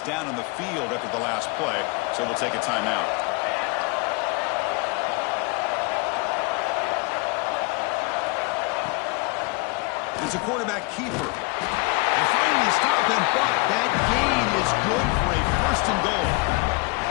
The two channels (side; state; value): right; quieter; 28.6 dB